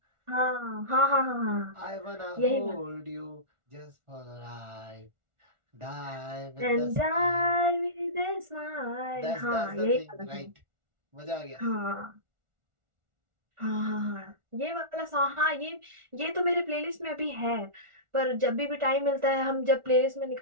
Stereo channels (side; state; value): left; late; 1.4 ms